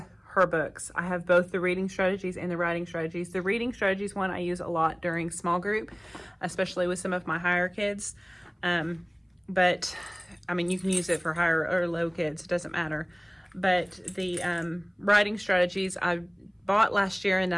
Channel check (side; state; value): both; identical; correlation 1.00